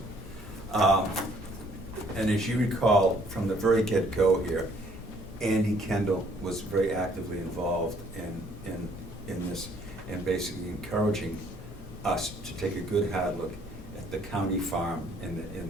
And as you recall, from the very get-go here, Andy Kendall was very actively involved in this, and basically encouraging us to take a good hard look at the county farm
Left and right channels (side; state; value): both; normal; correlation 0.62